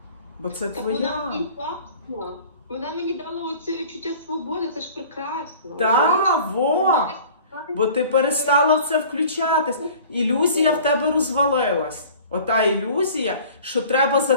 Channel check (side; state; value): both; inverted; correlation -0.46